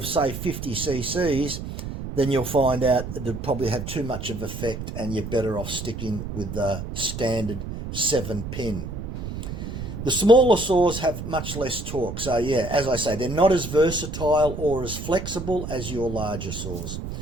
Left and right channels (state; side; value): noise; right; rumble, 7 dB below the sound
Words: say, 50 cc's, then you'll find out that it'd probably have too much of effect and you're better off sticking with the standard 7-pin. The smaller saws have much less torque. So, yeah, as I say, they're not as versatile or as flexible as your larger saws.